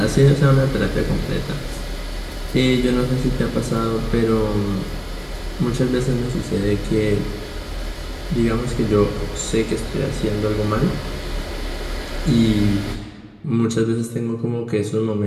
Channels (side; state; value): both; identical; correlation 1.00